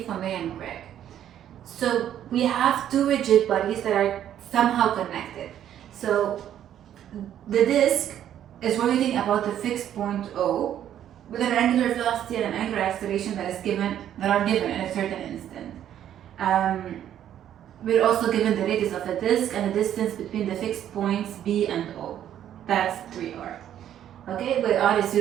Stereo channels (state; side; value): quieter; left; 10.7 dB